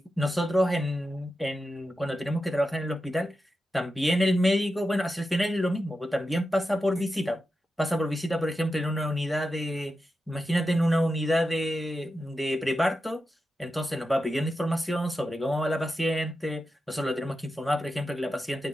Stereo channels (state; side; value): normal; both; correlation 0.90